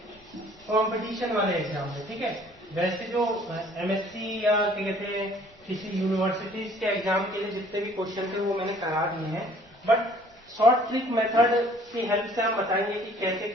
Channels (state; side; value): normal; both; correlation 0.56